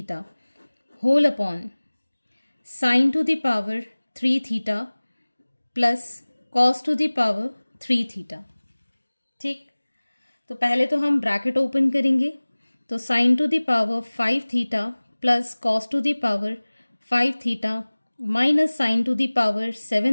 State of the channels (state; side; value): inverted; both; correlation -1.00